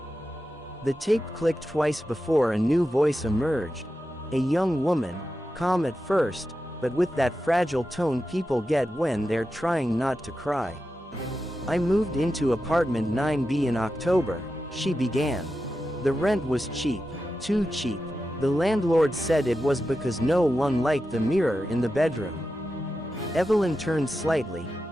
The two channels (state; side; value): normal; both; correlation 0.90